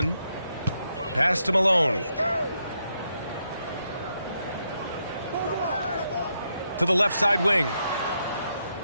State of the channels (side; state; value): both; inverted; correlation -0.80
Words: Pass to Malone. To the left side wing.